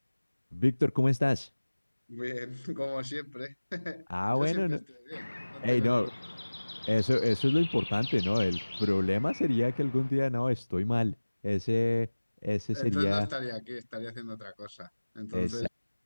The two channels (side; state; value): both; inverted; correlation -1.00